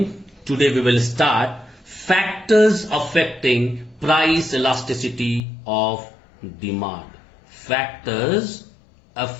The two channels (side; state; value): right; drops out; at 5.4 s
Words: Today we will start factors affecting price elasticity of demand. Factors